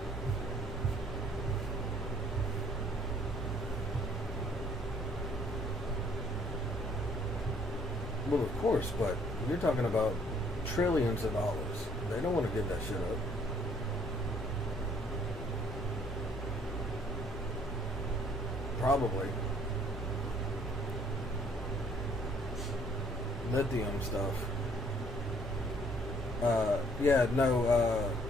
Well, of course, but you're talking about trillions of dollars. They don't want to give that shit up. Probably. Lithium stuff.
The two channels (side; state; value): both; normal; correlation 0.62